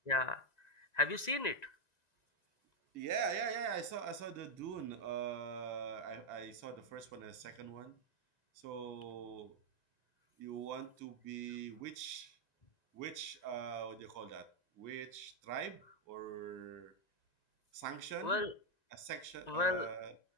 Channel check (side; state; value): right; late; 1.9 ms